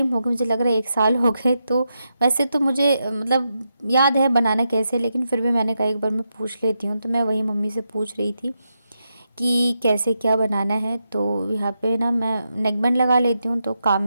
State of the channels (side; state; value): both; inverted; correlation -0.85